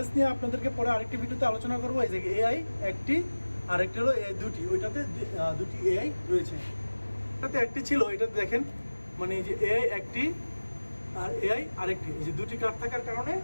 নিয়ে আপনাদেরকে পরে আরেকটি ভিডিওতে আলোচনা করবো। এই যে এআই একটি, আরেকটি হলো এআই দুটি, ওইটাতে দুটি এআই রয়েছে। এটাতে একটি ছিল, এটাতে দেখেন মানে এই যে এআই একটি আর এআই আরেকটি, এই যে দুটি কার্ড থাকার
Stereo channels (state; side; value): inverted; both; correlation -1.00